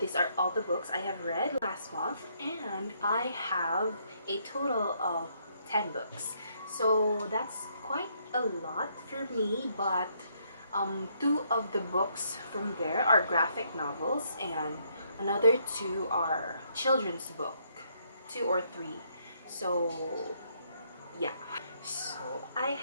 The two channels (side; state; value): both; inverted; correlation -0.72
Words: are all the books I have read last month, and I have a total of 10 books. So that's quite a lot for me, but two of the books from there are graphic novels and another two are children's book, 2 or 3. So yeah, so I